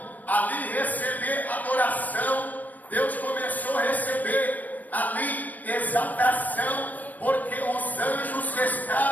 ali receber adoração, Deus começou a receber ali exaltação, porque os anjos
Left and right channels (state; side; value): late; right; 0.081 ms